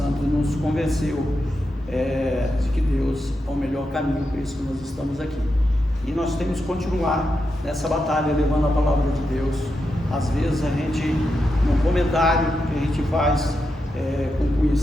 nos convenceu de que Deus é o melhor caminho, por isso que nós estamos aqui. E nós temos que continuar nessa batalha, levando a palavra de Deus. Às vezes a gente, num comentário que a gente faz com um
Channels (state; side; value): normal; both; correlation 0.87